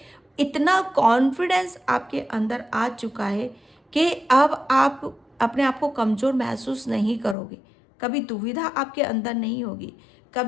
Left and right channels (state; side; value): drops out; right; at 7.4 s